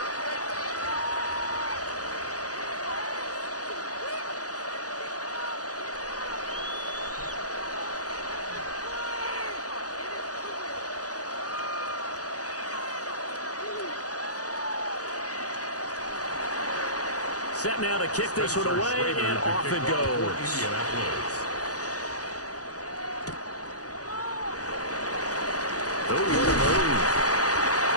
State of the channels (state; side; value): late; right; 0.67 ms